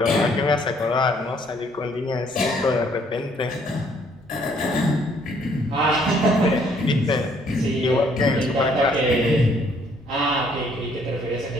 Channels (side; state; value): both; normal; correlation 0.65